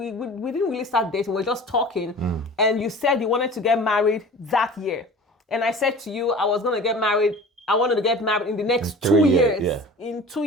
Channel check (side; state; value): both; normal; correlation 0.40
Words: didn't really start dating, we were just talking, and you said you wanted to get married that year. And I said to you, I wanted to get married in the next 2 years. Yeah. In 2